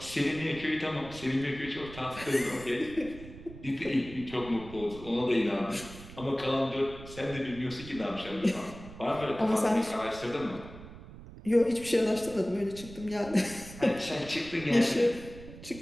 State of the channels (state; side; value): noise; right; rumble, 15 dB below the sound